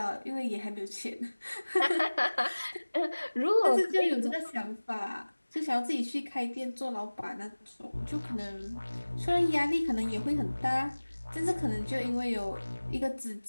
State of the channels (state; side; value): inverted; both; correlation -1.00